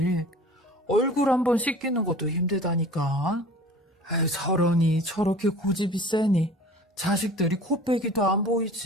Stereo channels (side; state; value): both; normal; correlation 0.44